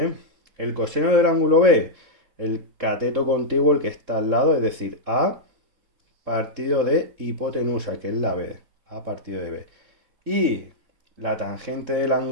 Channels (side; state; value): left; late; 3.7 ms